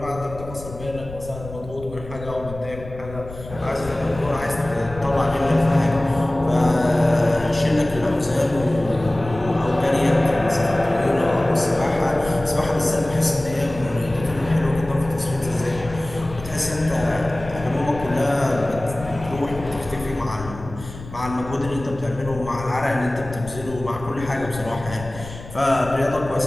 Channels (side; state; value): left; noise; rumble, 13 dB below the sound